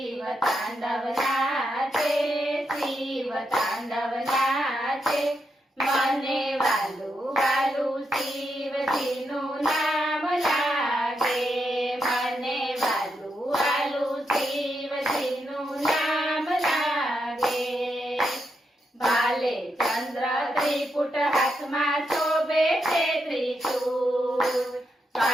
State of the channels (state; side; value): normal; both; correlation 0.83